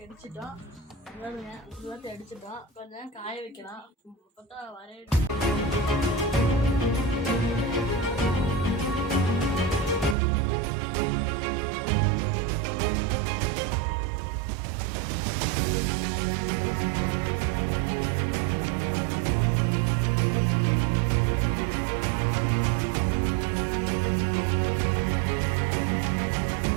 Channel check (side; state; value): left; drops out; at 10.2 s